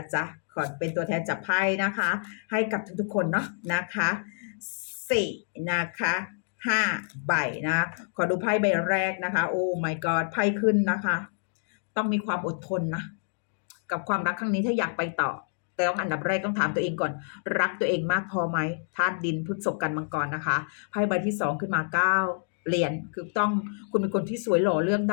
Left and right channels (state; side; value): silent; right; digital silence